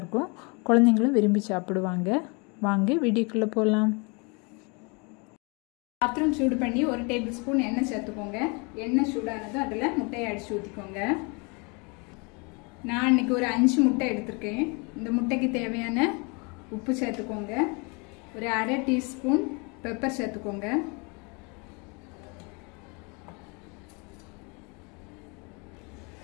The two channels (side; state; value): right; quieter; 31.3 dB